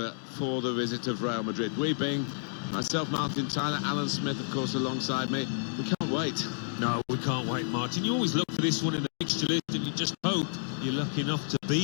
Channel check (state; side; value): silent; right; digital silence